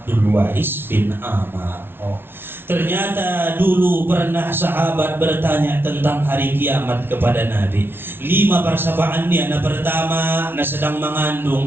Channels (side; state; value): left; late; 0.11 ms